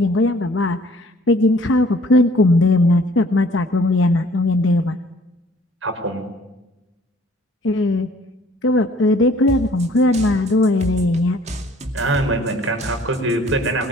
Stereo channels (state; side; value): normal; both; correlation 0.56